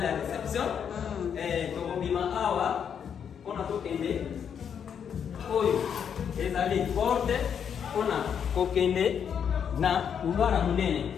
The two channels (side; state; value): right; quieter; 7.8 dB